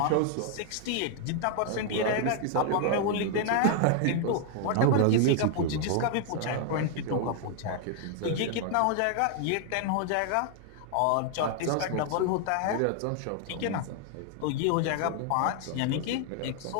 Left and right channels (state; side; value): different; both; correlation 0.00